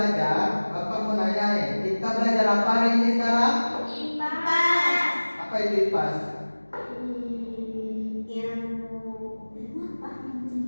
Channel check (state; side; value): inverted; both; correlation -1.00